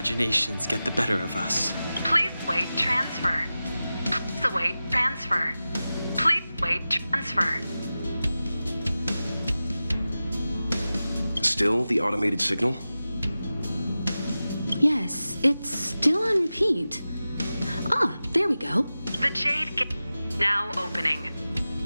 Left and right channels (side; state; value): both; inverted; correlation -0.95